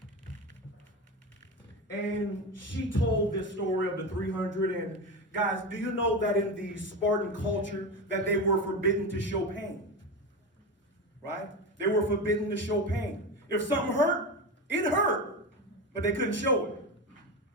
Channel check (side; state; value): both; normal; correlation 0.21